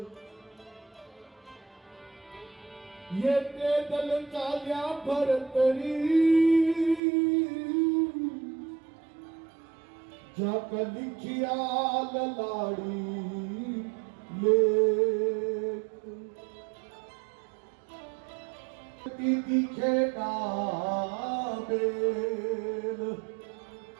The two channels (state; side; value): drops out; left; at 7.0 s